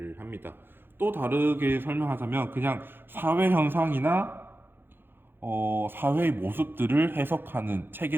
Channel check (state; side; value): late; left; 0.10 ms